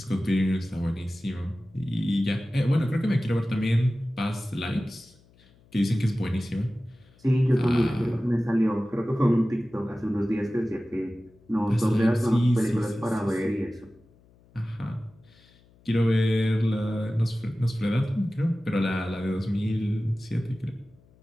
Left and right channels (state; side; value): noise; left; hum, 29 dB below the sound